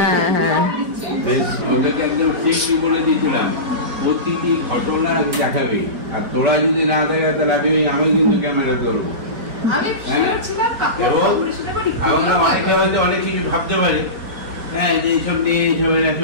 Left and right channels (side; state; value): left; late; 4.7 ms